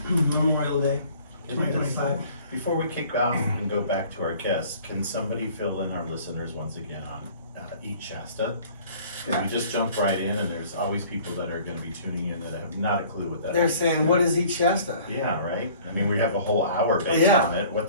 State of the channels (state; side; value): inverted; both; correlation -0.51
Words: Memorial Day, It is. 2025. Before we kick off and go back to our guests, can somebody fill in our listeners once again on Eat Shasta? 'Cause we just jumped right in, and there's always people that are gonna be tuning in that have not a clue what that is. They're saying, what is Eat Shasta? Yeah, right? I mean, we have a whole hour based Yeah. on it.